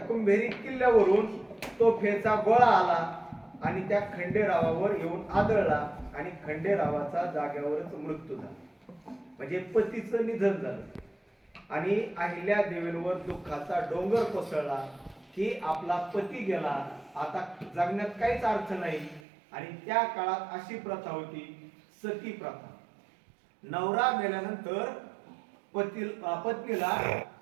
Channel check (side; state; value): left; drops out; at 19.2 s